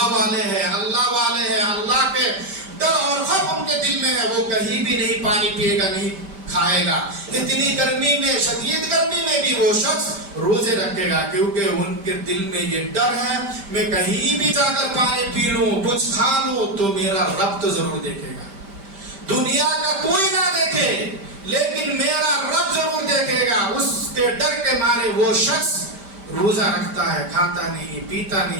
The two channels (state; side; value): late; left; 5.1 ms